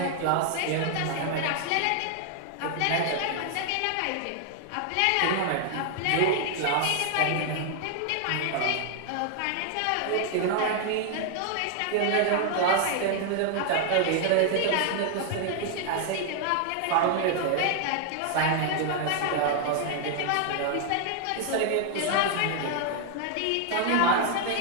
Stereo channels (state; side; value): different; both; correlation 0.00